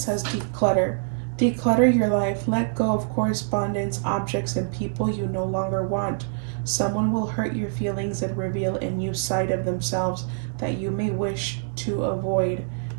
declutter. Declutter your life. Let go of correspondence, objects, and people you no longer want. Someone will hurt your feelings and reveal a new side of themselves that you may wish to avoid.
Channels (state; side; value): silent; left; digital silence